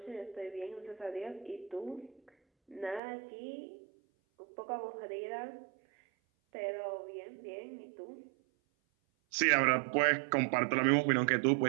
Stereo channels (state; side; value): drops out; left; at 3.0 s